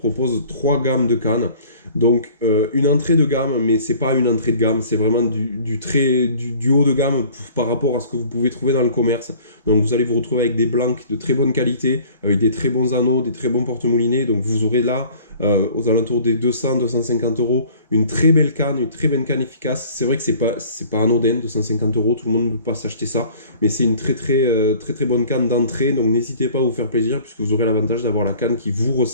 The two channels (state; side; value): inverted; both; correlation -0.50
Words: 3 gammes de cannes. Donc une entrée de gamme, mais c'est pas une entrée de gamme, c'est vraiment du haut de gamme par rapport à ce que vous pouvez trouver dans le commerce. Donc vous allez vous retrouver avec des blancs de très bonne qualité, avec des très bons anneaux, des très bons porte-moulinets. Donc vous aurez là, aux alentours des 200-250 euros, une très belle canne, une très belle canne efficace. C'est vrai que c'est pas anodin, 250 euros, tout le monde ne peut pas s'acheter ça, mais c'est une très bonne canne d'entrée. Donc n'hésitez pas à vous faire plaisir, puisque vous aurez l'avantage d'avoir la canne qui vous